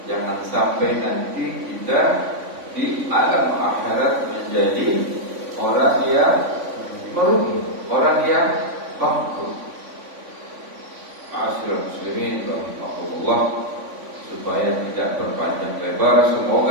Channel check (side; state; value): left; late; 3.5 ms